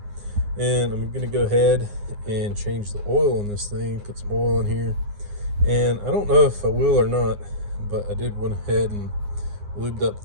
And I'm going to go ahead and change the oil in this thing. Put some oil in here. And I don't know if I will or not, but I did went ahead and lubed up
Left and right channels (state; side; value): late; left; 9.7 ms